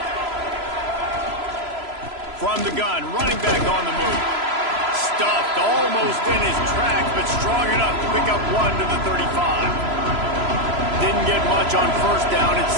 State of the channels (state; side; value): late; left; 3.0 ms